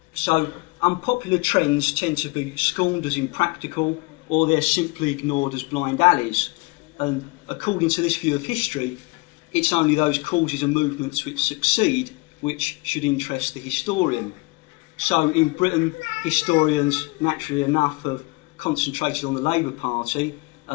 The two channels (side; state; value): right; quieter; 26.1 dB